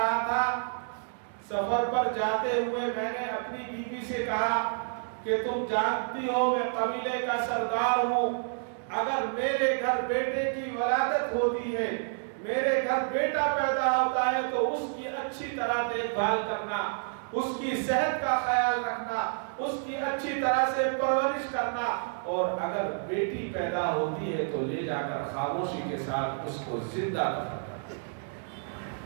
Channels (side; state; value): left; silent; digital silence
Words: تھا، سفر پر جاتے ہوئے میں نے اپنی بیوی سے کہا کہ تم جانتی ہو میں قبیلے کا سردار ہوں، اگر میرے گھر بیٹے کی ولادت ہوتی ہے، میرے گھر بیٹا پیدا ہوتا ہے تو اس کی اچھی طرح دیکھ بھال کرنا، اس کی صحت کا خیال رکھنا، اس کی اچھی طرح سے پرورش کرنا، اور اگر بیٹی پیدا ہوتی ہے تو لے جا کر خاموشی کے ساتھ اس کو زندہ دفن کرنا۔